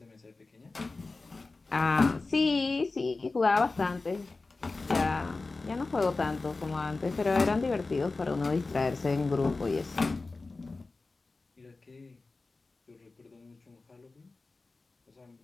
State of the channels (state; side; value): quieter; right; 3.6 dB